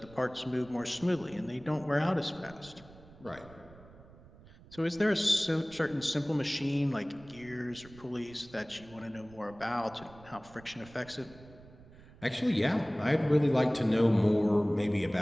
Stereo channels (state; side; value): noise; right; rumble, 22 dB below the sound